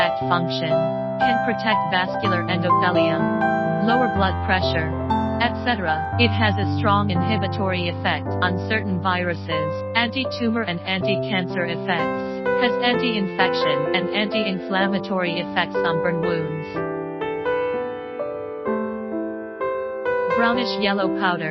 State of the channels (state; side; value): identical; both; correlation 1.00